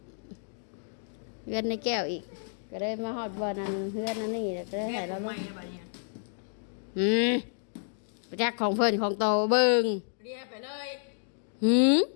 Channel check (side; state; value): right; silent; digital silence